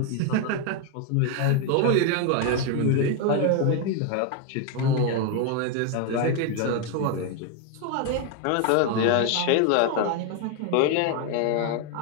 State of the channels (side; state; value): both; different; correlation 0.01